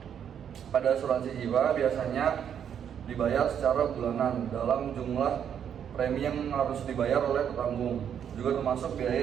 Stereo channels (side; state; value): left; quieter; 8.6 dB